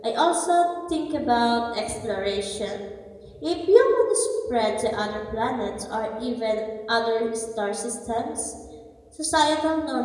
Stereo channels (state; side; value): identical; both; correlation 1.00